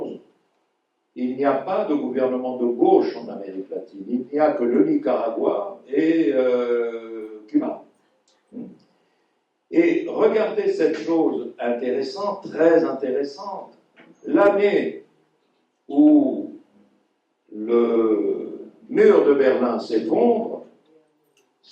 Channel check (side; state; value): both; identical; correlation 1.00